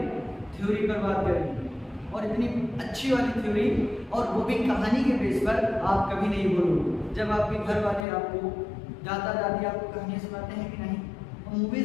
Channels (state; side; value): drops out; right; at 8.1 s